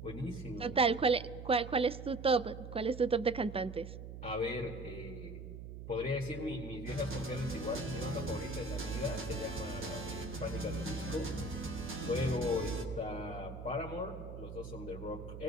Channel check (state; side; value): noise; right; hum, 10 dB below the sound